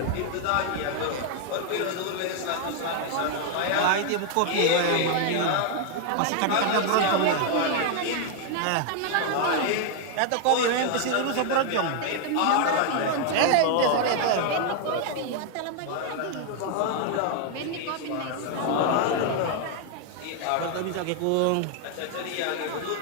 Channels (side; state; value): both; different; correlation 0.00